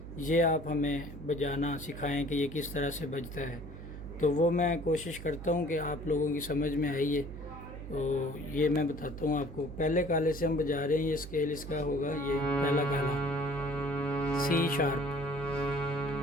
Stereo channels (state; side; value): noise; right; hum, 11 dB below the sound